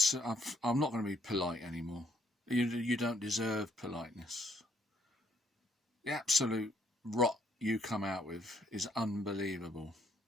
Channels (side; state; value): both; normal; correlation 0.70